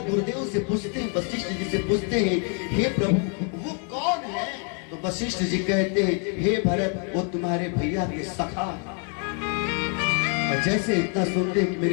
गुरुदेव से पूछते हैं, वशिष्ठ जी से पूछते हैं, हे प्रभु वो कौन है? तो वशिष्ठ जी कहते हैं, हे भरत वो तुम्हारे भैया के सखा। और जैसे इतना सुनते हैं कि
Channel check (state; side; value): quieter; right; 39.0 dB